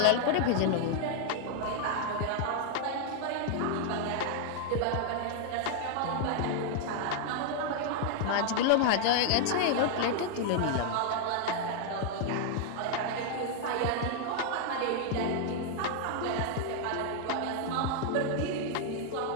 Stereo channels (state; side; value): different; both; correlation 0.00